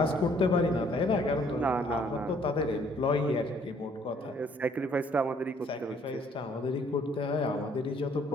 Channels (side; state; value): both; normal; correlation 0.62